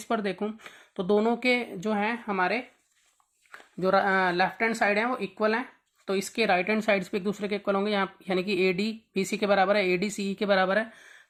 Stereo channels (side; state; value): both; identical; correlation 1.00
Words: पर देखूँ तो दोनों के जो हैं हमारे जो लेफ्ट हैंड साइड है वो इक्वल हैं। तो इसके राइट हैंड साइड्स भी एक दूसरे के इक्वल होंगे, यहाँ यानी कि AD BC के बराबर है, AD CE के बराबर है।